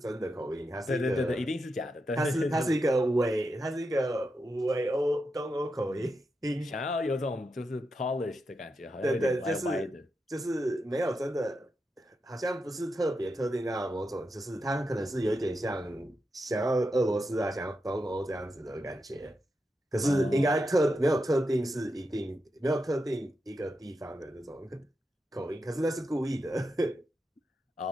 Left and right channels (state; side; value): normal; both; correlation 0.86